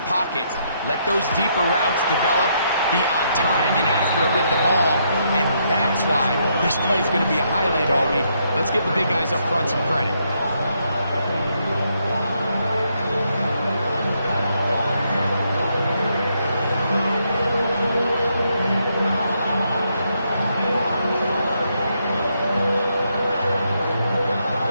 pocket. Let those deeper routes develop, be on time and accurate with the ball. And that's why this play is going to be a highlight all week. Let's give the big guys up front some credit.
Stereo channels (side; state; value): both; inverted; correlation -0.76